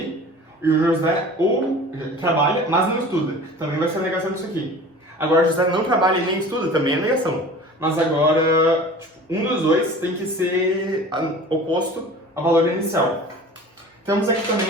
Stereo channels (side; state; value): both; normal; correlation 0.41